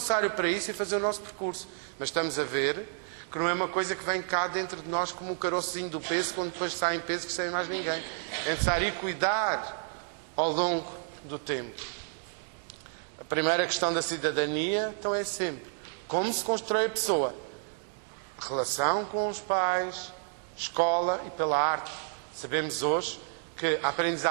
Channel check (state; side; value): silent; left; 57 dB below the other